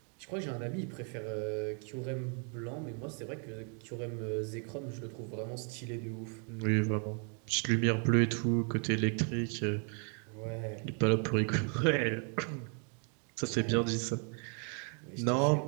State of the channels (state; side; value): quieter; left; 39.8 dB